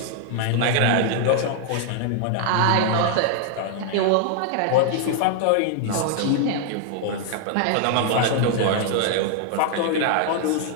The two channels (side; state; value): both; different; correlation 0.00